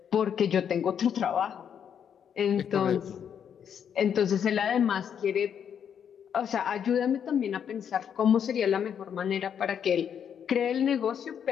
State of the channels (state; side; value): quieter; right; 8.2 dB